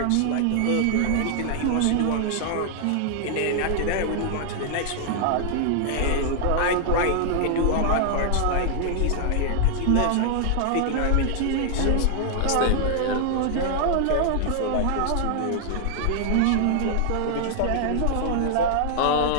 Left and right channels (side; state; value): both; different; correlation 0.00